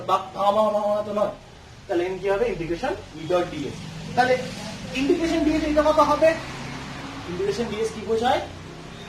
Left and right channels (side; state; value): both; identical; correlation 1.00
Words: ভাঙা তো নয়। তাহলে এন কি হবে? Integration E dot DS. তাহলে ইন্টিগ্রেশন ডিএস এটা কত হবে? ইন্টিগ্রেশন ডিএস কি বোঝায়?